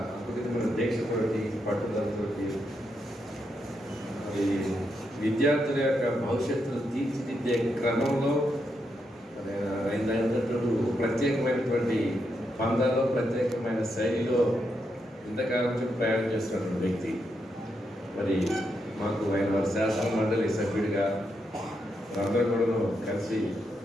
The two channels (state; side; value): normal; both; correlation 0.82